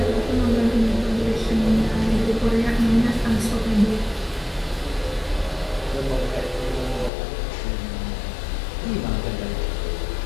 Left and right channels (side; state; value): right; drops out; at 7.1 s